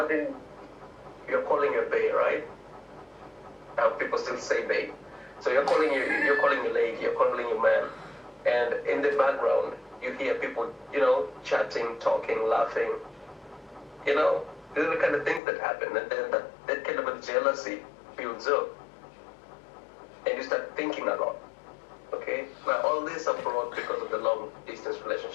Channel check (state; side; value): drops out; right; at 15.4 s